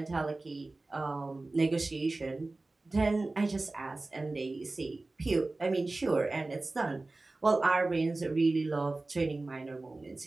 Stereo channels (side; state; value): left; quieter; 3.2 dB